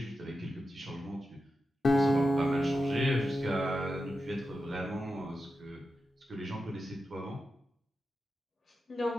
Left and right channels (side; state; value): both; normal; correlation 0.90